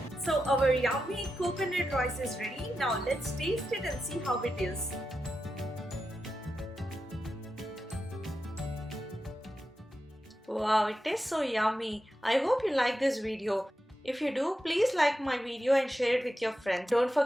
So our yummy coconut rice is ready. Now let's taste it and see how it is. Wow, it tastes so yummy. I hope you like this video. If you do, please like my video and share it with your friends. Don't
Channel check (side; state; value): both; normal; correlation 0.89